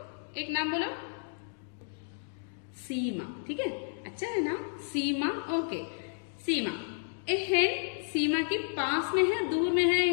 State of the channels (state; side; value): silent; right; digital silence